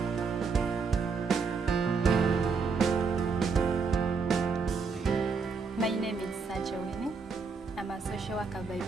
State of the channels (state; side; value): quieter; left; 5.0 dB